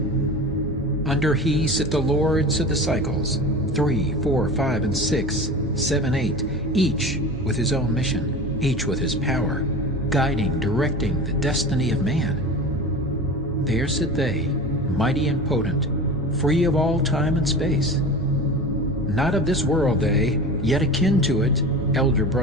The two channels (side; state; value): both; normal; correlation 0.32